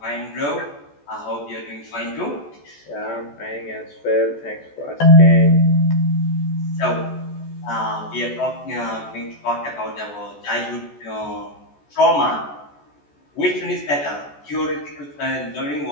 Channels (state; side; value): late; right; 14 ms